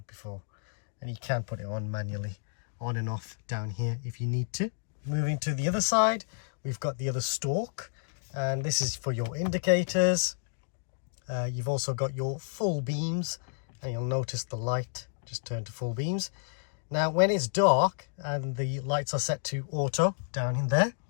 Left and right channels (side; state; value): right; silent; digital silence